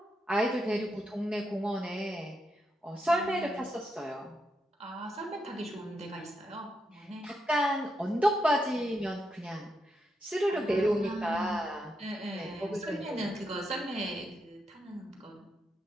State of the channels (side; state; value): both; normal; correlation 0.82